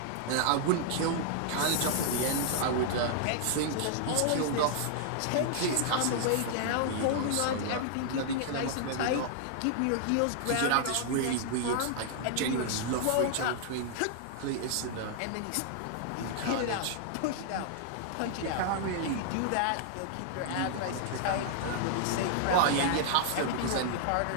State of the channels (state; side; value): different; both; correlation -0.01